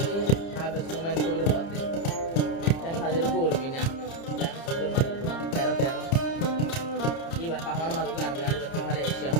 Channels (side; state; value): right; late; 30 ms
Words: আবে সুমাইন কবির হতে ঠ্যাং হাজির করবি না ঠ্যাং সুন্দর মারলাম 13 এবার পাহাড় মারু গান গাড়ি বেশি ভালো এসে